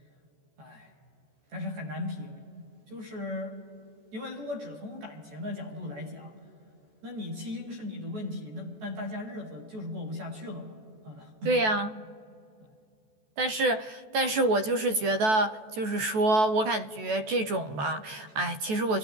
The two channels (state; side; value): late; left; 14 ms